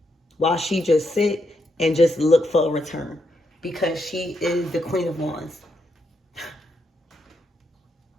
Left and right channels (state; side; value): normal; both; correlation 0.80